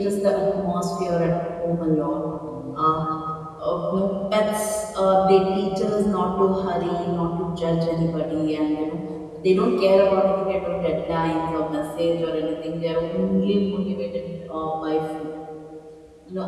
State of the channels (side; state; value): both; identical; correlation 1.00